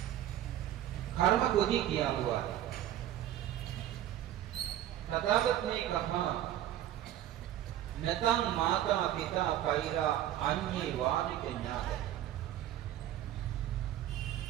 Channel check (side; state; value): left; quieter; 12.3 dB